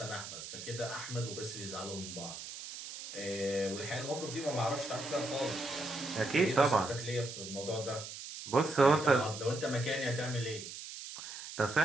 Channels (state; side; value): noise; right; hiss, 10 dB below the sound